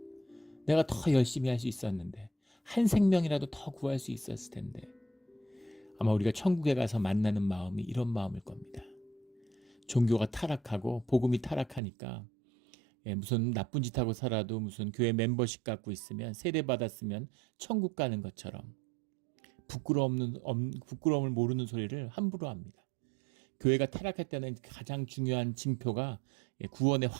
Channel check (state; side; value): drops out; left; at 11.8 s